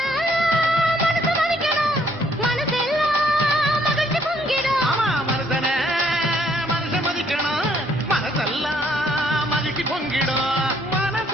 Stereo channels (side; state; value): both; normal; correlation 0.66